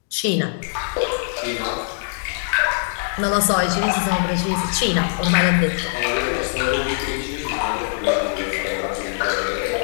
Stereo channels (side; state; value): right; silent; 64 dB below the other